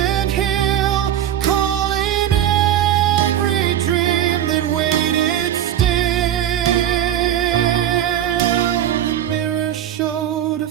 hill, calling every dream that waited still. The mirror showed a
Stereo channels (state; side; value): quieter; left; 11.0 dB